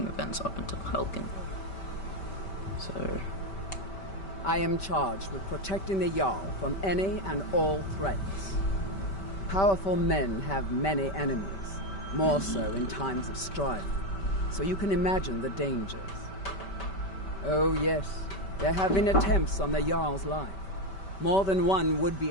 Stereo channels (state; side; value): late; right; 5.2 ms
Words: events up until Helgen. So... I am charged with protecting the Jarl from any and all threats. Powerful men have many enemies, more so in times of strife, so you can imagine the dangers. Oh yes, there have been attempts on the Jarl's life. More than one